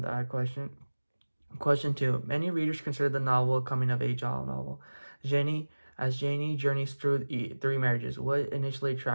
question. Question two: many readers consider the novel a coming of age novel. Janie journeys through three marriages, what initially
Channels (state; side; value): inverted; both; correlation -1.00